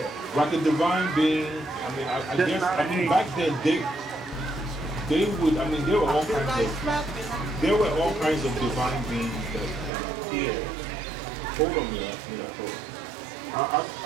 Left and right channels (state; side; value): drops out; left; at 9.9 s